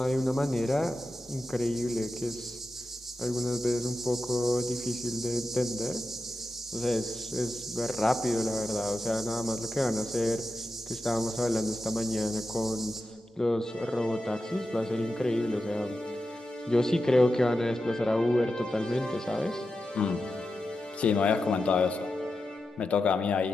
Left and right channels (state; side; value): normal; both; correlation 0.90